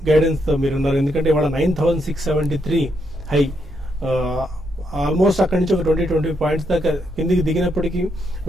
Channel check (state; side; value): normal; both; correlation 0.78